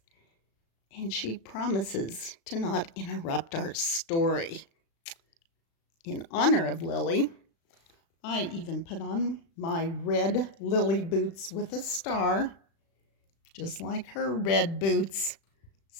and she promises to not interrupt our story. In honor of Lily, I even put on my red Lily boots with a star, just like her red boots,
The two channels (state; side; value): late; right; 36 ms